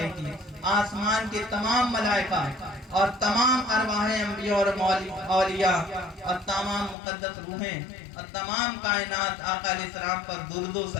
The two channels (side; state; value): right; drops out; at 7.0 s